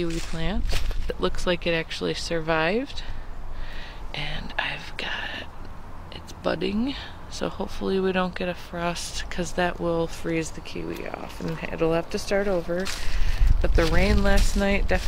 plant. It looks like it actually survived. And I've got, it's budding. So hopefully we don't get a frost because that will freeze the kiwi off and it'll have to start over. But the rain last night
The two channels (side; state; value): both; identical; correlation 1.00